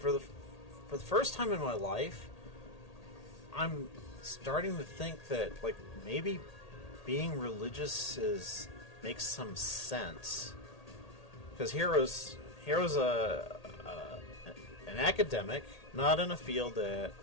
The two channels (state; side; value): late; right; 1.8 ms